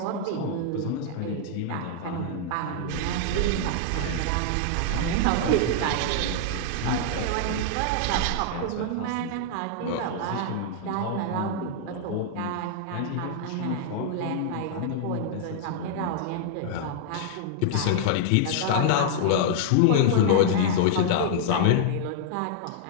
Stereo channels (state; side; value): different; both; correlation -0.01